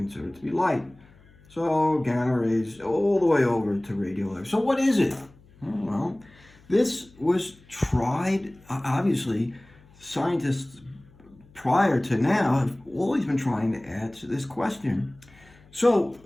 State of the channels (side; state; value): left; noise; hum, 27 dB below the sound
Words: to be light. So gamma rays all the way over to radio waves. So what is it? Well, this was tried, obviously, scientists prior to now have always been trying to answer this question. So